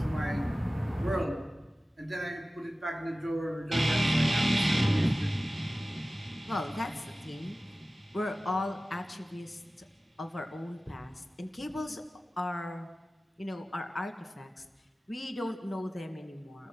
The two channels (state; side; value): normal; both; correlation 0.96